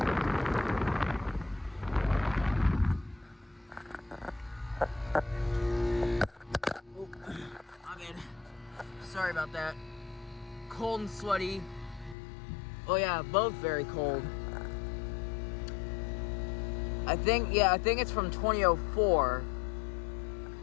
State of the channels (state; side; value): drops out; right; at 12.2 s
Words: Oh, I'm in. Sorry about that. Cold and sweaty. Oh yeah, both very cold. I think it's from 2004.